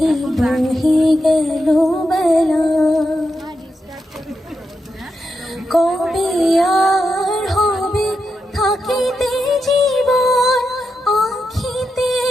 বহে গেল বেলা কবে আর হবে থাকিতে জীবন আখিতে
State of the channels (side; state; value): both; normal; correlation 0.86